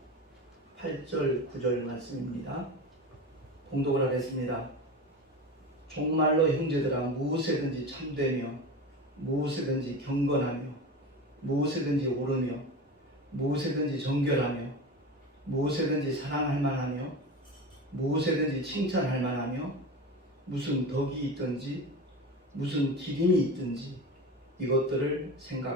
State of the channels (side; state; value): both; normal; correlation 0.28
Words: 8절 9절 말씀입니다. 봉독을 하겠습니다. 종말로 형제들아 무엇에든지 참되며 무엇에든지 경건하며 무엇에든지 옳으며 무엇에든지 정결하며 무엇에든지 사랑할 만하며 무엇에든지 칭찬할 만하며 무슨 덕이 있든지 무슨 기림이 있든지 이것들을